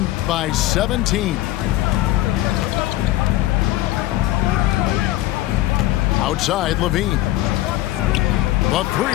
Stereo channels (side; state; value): right; quieter; 15.7 dB